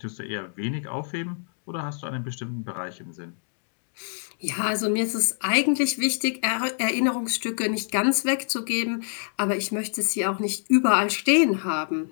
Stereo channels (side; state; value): right; silent; digital silence